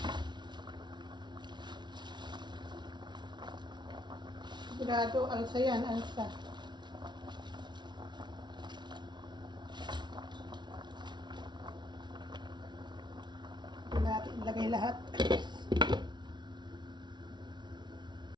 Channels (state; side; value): late; left; 0.21 ms